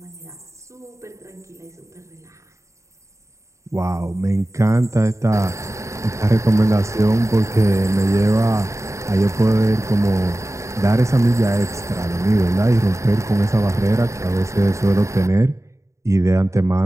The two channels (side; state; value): left; late; 0.14 ms